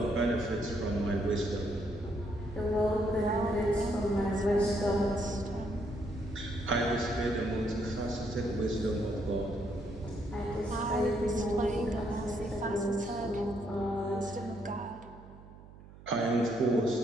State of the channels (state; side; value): noise; right; hum, 19 dB below the sound